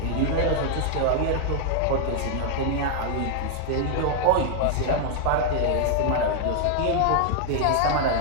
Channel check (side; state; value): both; different; correlation 0.00